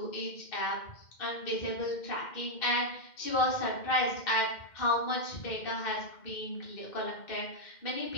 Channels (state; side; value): late; right; 2.1 ms